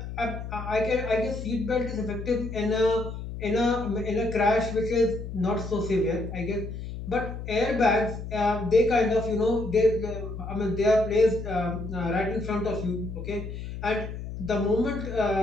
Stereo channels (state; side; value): noise; left; hum, 8 dB below the sound